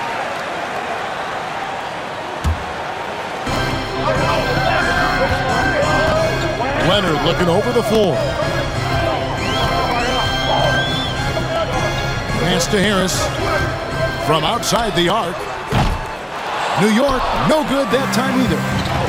Leonard looking over the floor. Pass to Harris from outside the arc. New York, no good that time either.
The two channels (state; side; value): identical; both; correlation 1.00